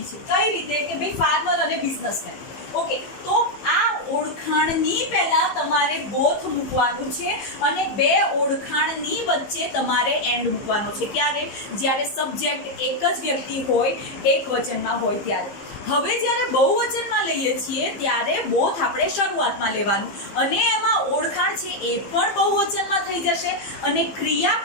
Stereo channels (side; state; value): right; late; 15 ms